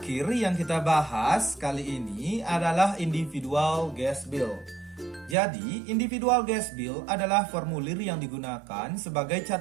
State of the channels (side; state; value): left; drops out; at 5.4 s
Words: yang kita bahas kali ini adalah individual gas bill. Jadi, individual gas bill adalah formulir yang digunakan sebagai